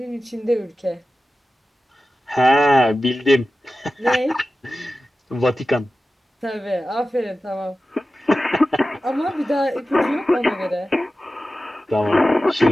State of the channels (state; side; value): normal; both; correlation 0.94